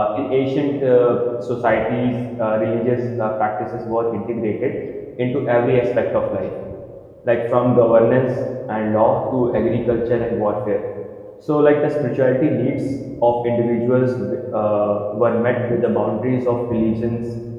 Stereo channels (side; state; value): both; identical; correlation 1.00